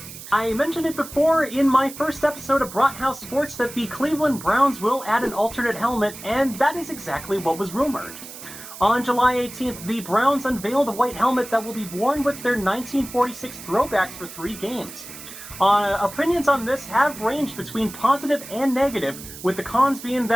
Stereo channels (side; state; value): right; noise; hiss, 14 dB below the sound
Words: I mentioned it before in my first episode of Brathouse Sports that the Cleveland Browns will add an alternate helmet, and that is exactly what was rumored. On July 18th, the Browns unveiled a white helmet that will be worn with their 1946 throwbacks for 3 games. Opinions on this have ranged between positive and negative, with the cons being